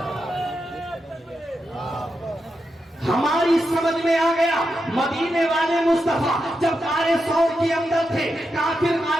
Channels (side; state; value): both; normal; correlation 0.87